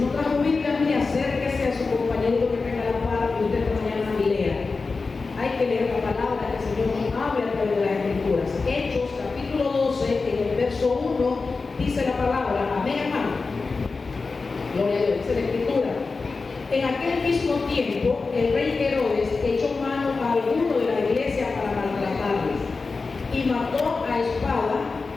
no trajo Biblia, mire, acérquese a su compañero que tenga la par y usted mañana y lea. Hay que leer la palabra que el Señor nos habla a través de las Escrituras. Hechos, capítulo 12, en el verso 1, dice la palabra. Amén, hermano. Gloria a Dios, dice la Escritura. En aquel mismo tiempo, el rey Herodes echó mano a alguno de la iglesia para maltratarles y mató a espada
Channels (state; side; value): quieter; right; 4.2 dB